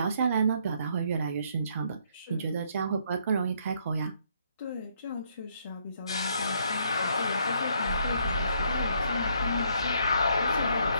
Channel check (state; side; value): inverted; both; correlation -0.69